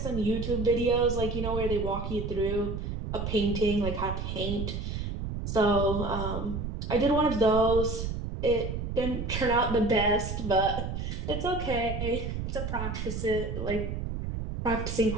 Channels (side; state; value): right; noise; rumble, 4 dB below the sound